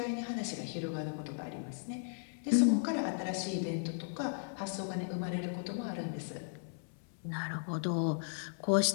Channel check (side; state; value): right; silent; 54 dB below the other